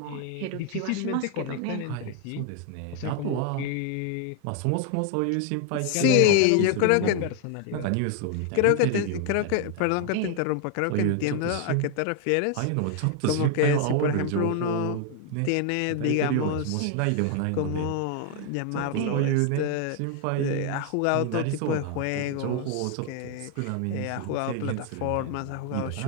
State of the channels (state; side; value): different; both; correlation 0.01